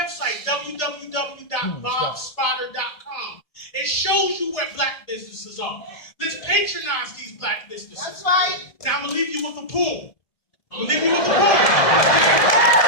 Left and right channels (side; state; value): right; late; 1.8 ms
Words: www.bobspotter.com. It shows you where black businesses are. Let's patronize these black businesses. That's right. Now, I'm going to leave you with a poem. Hear